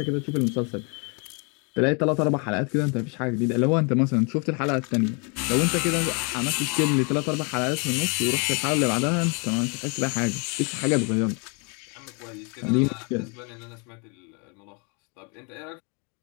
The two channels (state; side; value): quieter; right; 34.7 dB